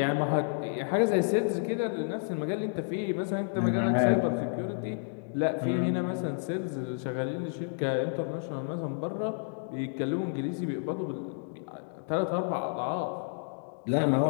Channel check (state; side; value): silent; right; digital silence